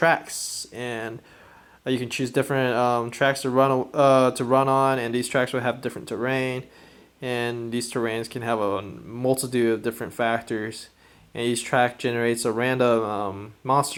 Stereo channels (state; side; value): identical; both; correlation 1.00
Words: and you can choose different tracks to run on, and these tracks will have different terrain, and these terrains can have a multitude of different factors. And each track generates a random